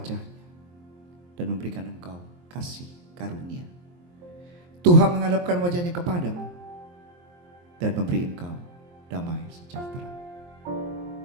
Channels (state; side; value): late; left; 23 ms